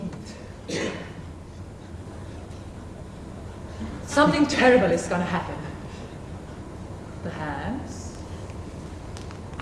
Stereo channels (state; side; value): identical; both; correlation 1.00